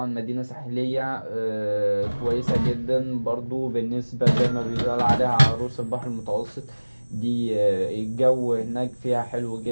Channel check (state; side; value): inverted; both; correlation -1.00